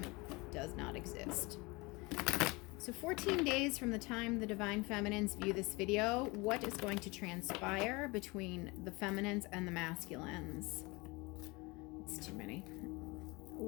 does not exist. So 14 days from the time the Divine Feminines view this video, what is going to transpire between the feminines and the masculines? It's too many.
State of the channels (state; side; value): quieter; right; 25.2 dB